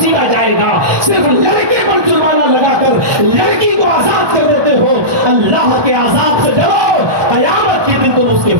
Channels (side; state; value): left; late; 1.2 ms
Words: جائے گا۔ صرف لڑکے پر جرمانہ لگا کر لڑکی کو آزاد کر دیتے ہو، اللہ کے عذاب سے ڈرو، قیامت کے دن تم اس کے